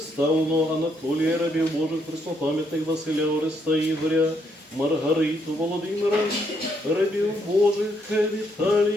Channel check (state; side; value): normal; both; correlation 0.74